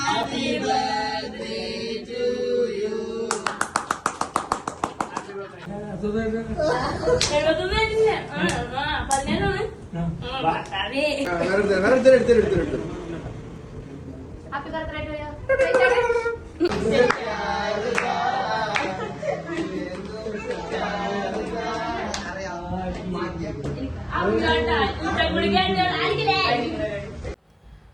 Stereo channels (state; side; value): identical; both; correlation 1.00